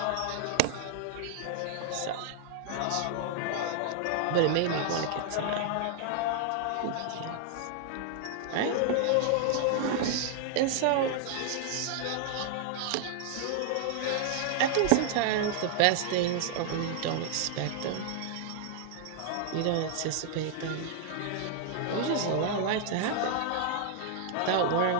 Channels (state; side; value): different; both; correlation 0.00